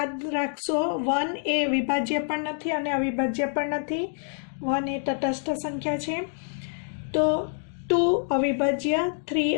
राखशो 1 ए विभाज्य पण नथी अने अविभाज्य पण नथी। 1 ए तटस्थ संख्या छे तो 2 अविभाज्य, 3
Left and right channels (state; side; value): silent; right; digital silence